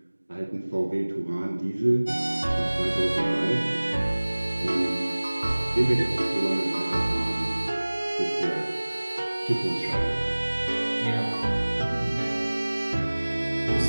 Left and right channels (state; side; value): inverted; both; correlation -1.00